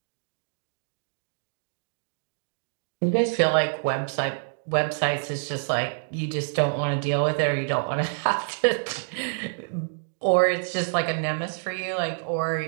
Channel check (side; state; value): left; silent; digital silence